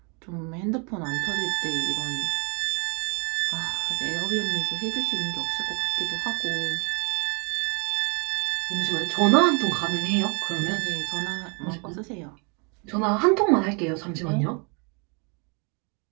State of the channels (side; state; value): left; quieter; 34.5 dB